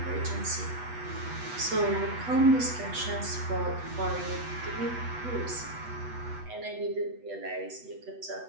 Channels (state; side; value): late; left; 8.1 ms